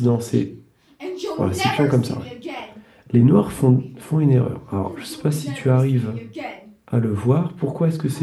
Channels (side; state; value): both; identical; correlation 1.00